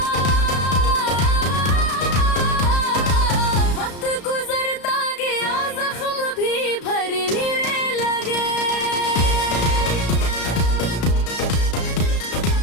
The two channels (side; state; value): right; late; 34 ms